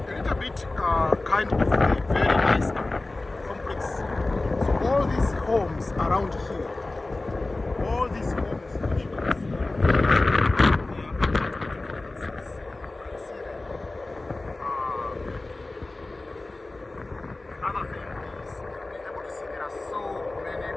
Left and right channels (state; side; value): quieter; right; 3.0 dB